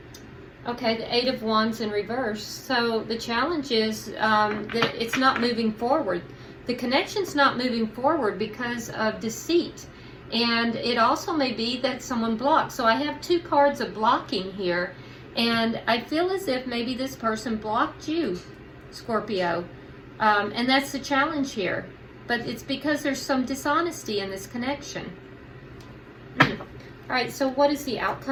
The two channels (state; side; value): identical; both; correlation 1.00